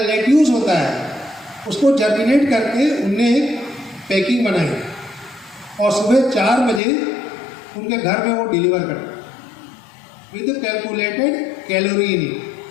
होता है, उसको जर्मिनेट करके उनने एक पैकिंग बनाई और सुबह 4 बजे उनके घर में वो डिलीवर करते with calculated calorie in it.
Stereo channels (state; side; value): drops out; right; at 6.8 s